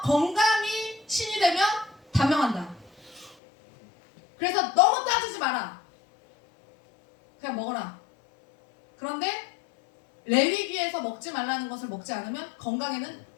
건강이 신이 되면 단명한다. 그래서 너무 따지지 마라. 그냥 먹어라. 그런데 레위기에서 먹지 말라는 것을 먹지 않으면 건강에는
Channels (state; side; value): drops out; right; at 3.4 s